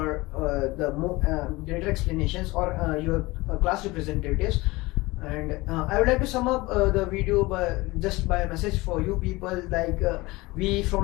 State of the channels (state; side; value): quieter; right; 21.7 dB